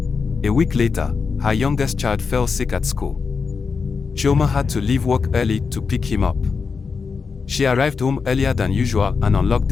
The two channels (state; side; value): quieter; right; 5.2 dB